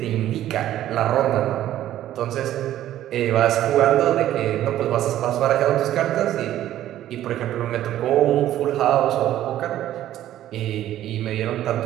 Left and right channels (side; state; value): left; quieter; 12.8 dB